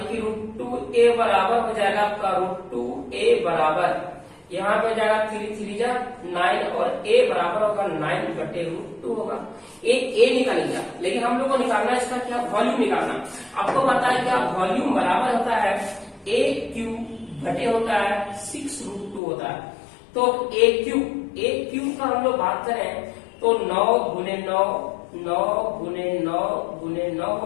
कि √2a बराबर हो जाएगा आपका √2a बराबर यहाँ पे हो जाएगा 3 3 जा 9 और a बराबर होगा 9 बटे √2 होगा। a निकल गया, लेकिन हम लोग को निकालना है इसका क्या? वॉल्यूम निकालना। आपको पता है क्या वॉल्यूम बराबर होता है a³ बटे होता है 6√2 होता है। तो a³ का हम लोग बात करें तो 9 गुने 9 9 गुने 9 गुने 9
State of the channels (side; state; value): right; drops out; at 19.2 s